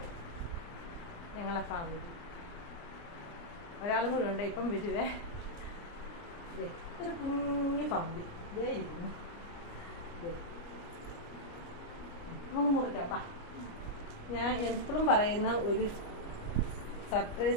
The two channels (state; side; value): late; right; 29 ms